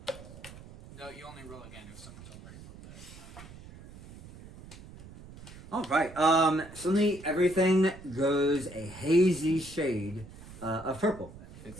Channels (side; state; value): right; noise; rumble, 17 dB below the sound